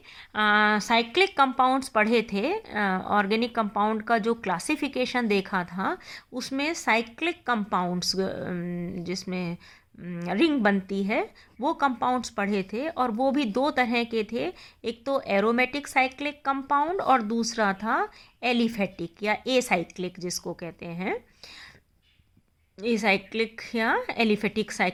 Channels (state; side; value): identical; both; correlation 1.00